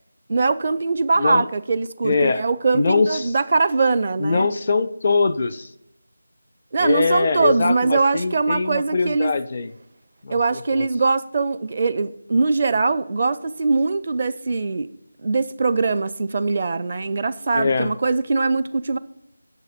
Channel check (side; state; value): both; inverted; correlation -0.88